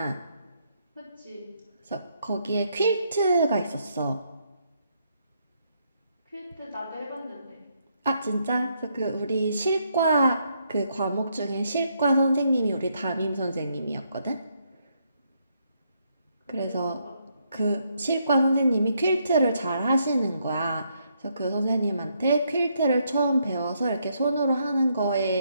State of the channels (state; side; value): inverted; both; correlation -0.75